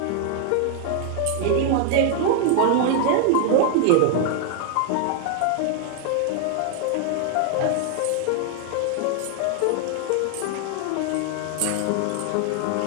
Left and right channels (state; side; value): different; both; correlation 0.00